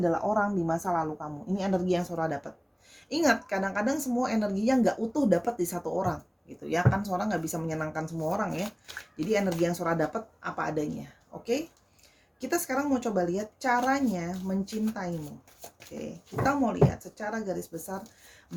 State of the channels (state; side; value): identical; both; correlation 1.00